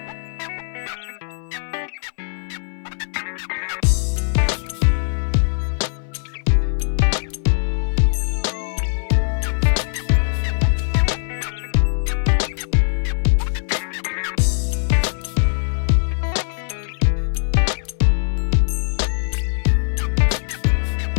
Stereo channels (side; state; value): right; silent; 60 dB below the other